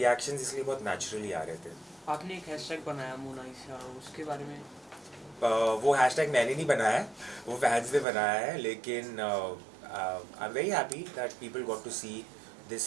इसलिए बहुत नेचुरली आ रहे थे. आपने एक हैशटैग बनाया मोनालिसा, उसके बारे में? वो हैशटैग मैंने नहीं बनाया है, वो फैंस ने बनाया है. लेकिन I am very happy that people got to see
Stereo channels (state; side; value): drops out; left; at 8.1 s